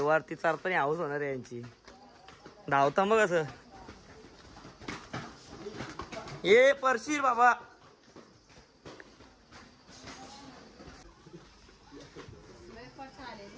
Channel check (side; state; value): both; identical; correlation 1.00